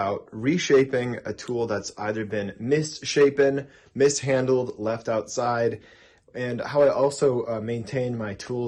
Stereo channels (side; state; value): both; identical; correlation 1.00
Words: reshaping a tool that's either been misshapen, mishandled, left outside, and how I also maintain my